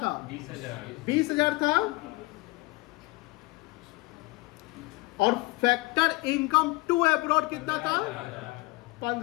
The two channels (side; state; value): right; quieter; 23.4 dB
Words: 20,000 था। और फैक्टर इनकम टू अब्रॉड कितना था?